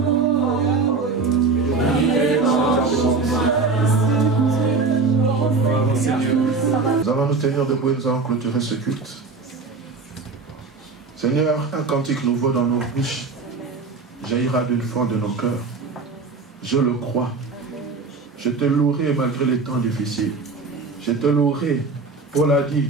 il est bon pour moi. Nous allons nous tenir debout et nous allons clôturer ce culte. Seigneur, un cantique nouveau dans nos bouches jaillira d'une fond de nos cœurs. Je le crois. Je te louerai malgré les temps difficiles. Je te louerai. Paul a dit,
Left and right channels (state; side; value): quieter; left; 4.2 dB